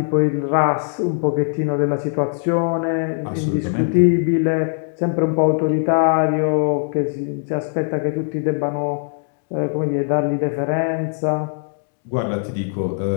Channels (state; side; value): silent; right; digital silence